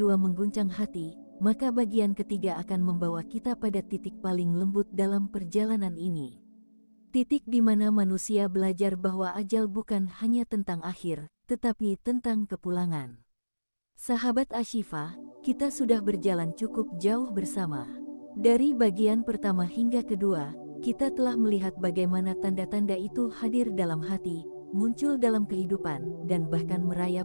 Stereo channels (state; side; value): inverted; both; correlation -1.00